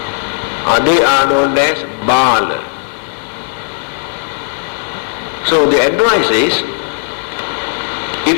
They are known as Bala. So the advice is,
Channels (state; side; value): silent; right; digital silence